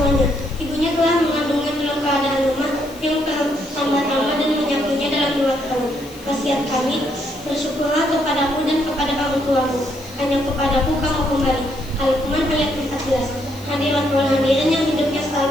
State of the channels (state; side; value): noise; left; hiss, 22 dB below the sound